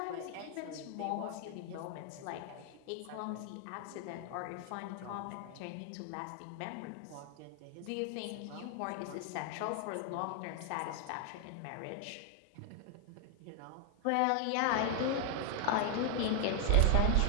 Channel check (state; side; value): different; both; correlation 0.00